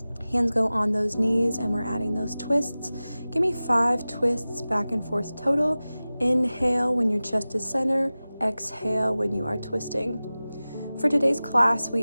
Hands go on those knees, and we're adding those twists. Give me 5 twists back and forth total. Inhale when your chest is center. Exhale when you are twisting. For today's class,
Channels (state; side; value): inverted; both; correlation -0.97